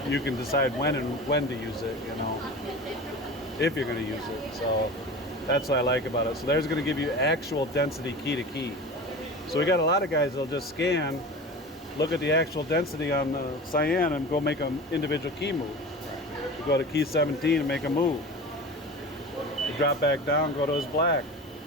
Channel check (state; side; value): normal; both; correlation 0.33